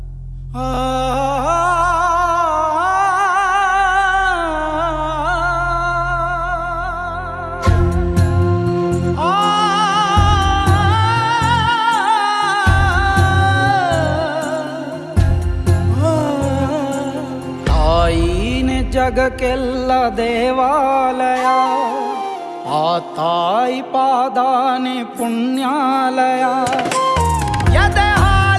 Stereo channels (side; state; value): both; identical; correlation 1.00